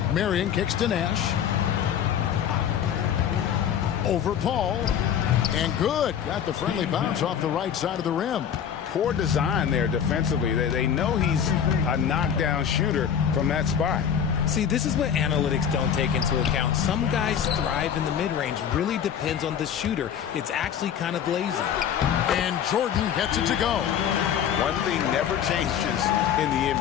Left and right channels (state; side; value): quieter; right; 8.6 dB